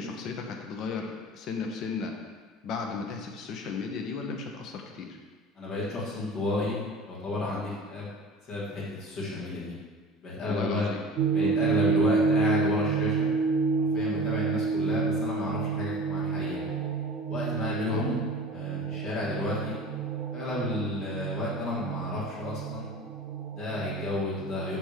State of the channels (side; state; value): both; normal; correlation 0.38